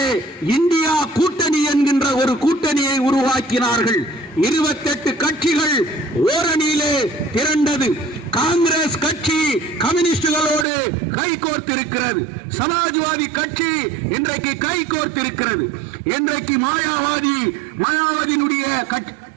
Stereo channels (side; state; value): left; drops out; at 10.7 s